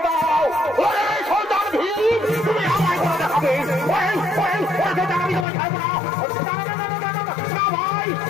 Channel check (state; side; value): drops out; right; at 5.5 s